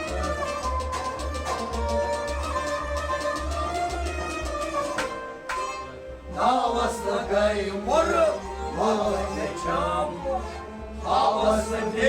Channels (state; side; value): identical; both; correlation 1.00